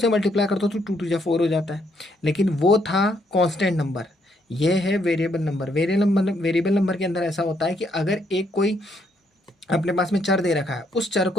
मल्टीप्लाई करता हूँ तो 2 2 4 हो जाता है, लेकिन वो था कांस्टेंट नंबर, ये है वेरिएबल नंबर। वेरिएबल नंबर के अंदर ऐसा होता है कि अगर एक कोई अपने पास में चर दे रखा है, उस चर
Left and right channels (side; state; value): both; normal; correlation 0.73